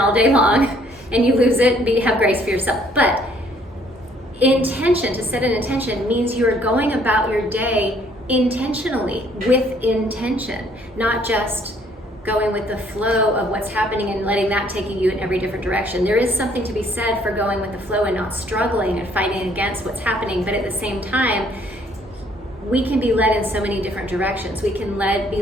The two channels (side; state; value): both; normal; correlation 0.63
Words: day long and you lose it, have grace for yourself. But to set an intention means you are going about your day intentionally, with intention, not just going with the flow of what's happening and letting that take you in every different direction. There is something to be said for going with the flow and not struggling and fighting against what's happening, but at the same time, we can be led in so many different directions. We can be